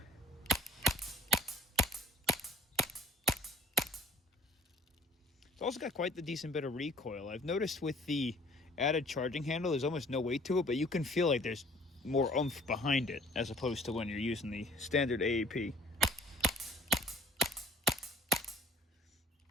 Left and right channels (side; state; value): both; normal; correlation 0.54